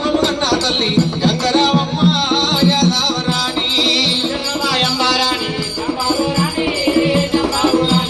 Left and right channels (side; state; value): both; identical; correlation 1.00